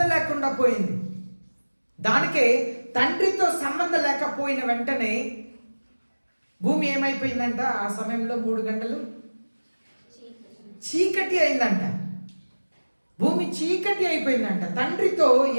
లేకుండా పోయింది. దానికే తండ్రితో సంబంధం లేకపోయిన వెంటనే భూమి ఏమైపోయిందంట? ఆ సమయంలో 3 గంటలు చీకటి అయిందంట. భూమి చీకటి అయిపోయిందంట. తండ్రితో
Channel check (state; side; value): inverted; both; correlation -1.00